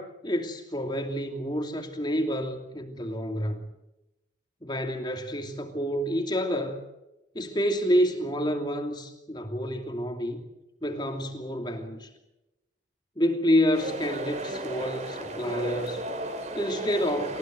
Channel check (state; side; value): normal; both; correlation 0.65